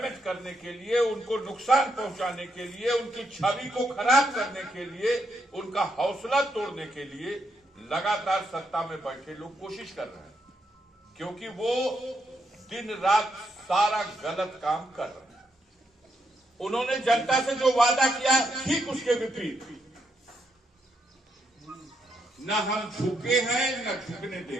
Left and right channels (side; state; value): both; normal; correlation 0.79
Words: करने के लिए, उनको नुकसान पहुंचाने के लिए, उनकी छवि को खराब करने के लिए, उनका हौसला तोड़ने के लिए लगातार सत्ता में बैठे लोग कोशिश कर रहे हैं, क्योंकि वो दिन रात सारा गलत काम कर रहे हैं। उन्होंने जनता से जो वादा किया, ठीक उसके विपरीत, न हम झुके हैं न झुकने